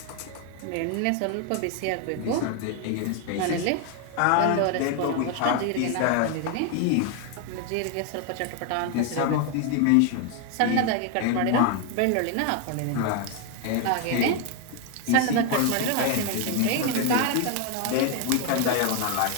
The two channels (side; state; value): both; different; correlation 0.01